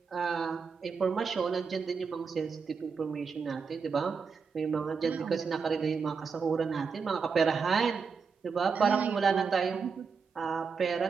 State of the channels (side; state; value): left; quieter; 5.5 dB